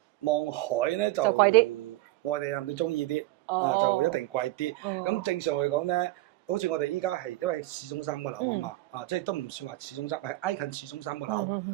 望海咧就貴啲，外地人都中意啲，就一定貴啲。咁正常嚟講咧，好似我哋依家係因為市中心個樓啊嘛，即係都唔算話市中心，係挨近市中心個樓。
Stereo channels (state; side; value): quieter; left; 18.1 dB